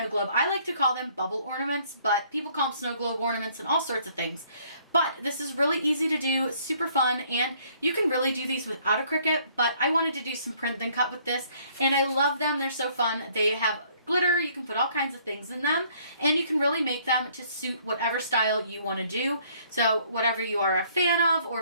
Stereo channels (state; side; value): inverted; both; correlation -0.62